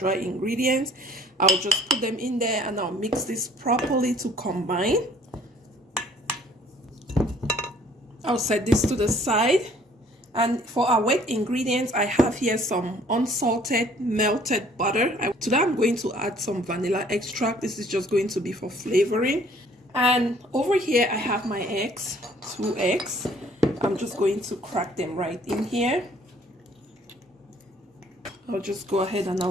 ingredients. I'll just put them in there and I'll mix this properly to combine. I'll set this to the side. And for our wet ingredients, I have here some unsalted melted butter. To that, I'm going to add some vanilla extract. This is just going to be for flavoring. And over here, I have my eggs, 2 eggs. I'm just going to crack them right in here. I'll just go ahead and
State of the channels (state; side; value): normal; both; correlation 0.57